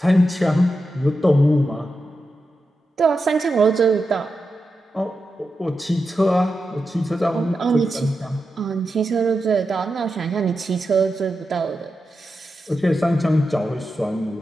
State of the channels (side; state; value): both; normal; correlation 0.89